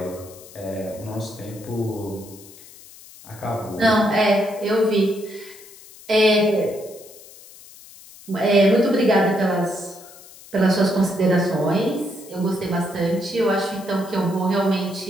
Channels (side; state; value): left; noise; hiss, 20 dB below the sound